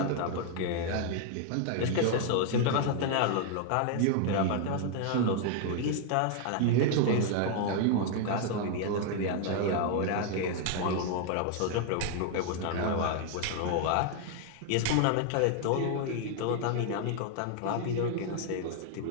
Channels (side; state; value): both; different; correlation 0.00